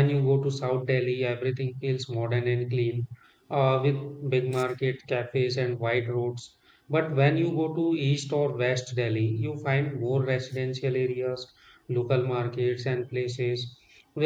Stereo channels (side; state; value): both; identical; correlation 1.00